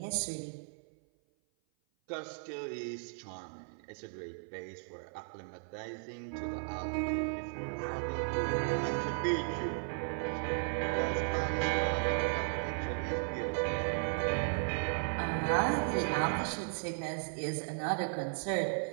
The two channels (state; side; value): silent; left; 54 dB below the other